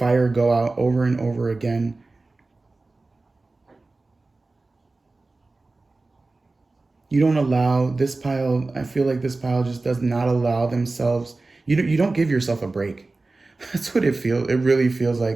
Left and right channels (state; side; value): quieter; left; 3.4 dB